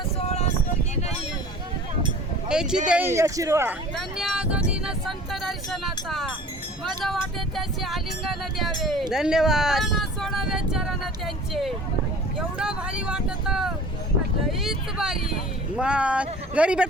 याची देई शिरवा संत दर्शनाचा माझा वाटे त्याचे आलिंगन द्यावे, धन्यवाद. सोडावे चरण त्यांचे. एवढं भारी वाटत, लईच भारी. मग घरी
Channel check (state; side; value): normal; both; correlation 0.45